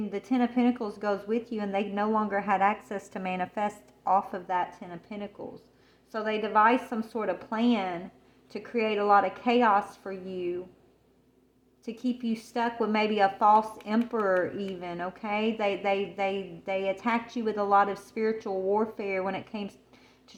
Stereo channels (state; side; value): identical; both; correlation 1.00